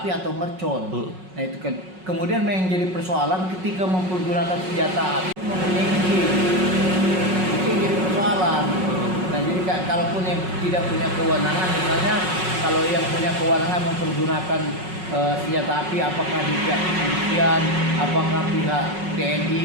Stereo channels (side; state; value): left; late; 5.4 ms